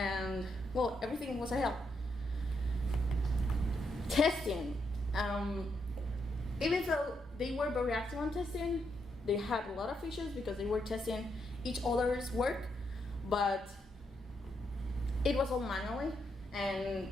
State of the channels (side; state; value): both; normal; correlation 0.79